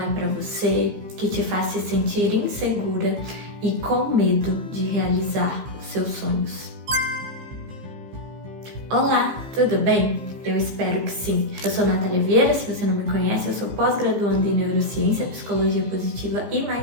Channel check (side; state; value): left; late; 15 ms